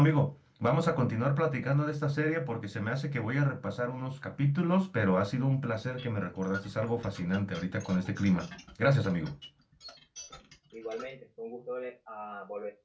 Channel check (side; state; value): both; identical; correlation 1.00